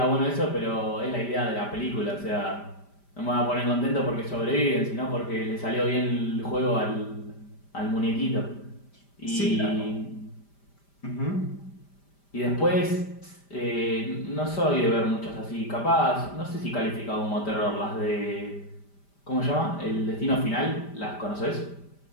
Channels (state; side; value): late; right; 5.0 ms